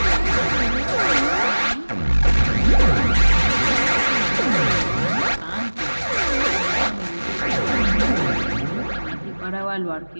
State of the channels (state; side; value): inverted; both; correlation -1.00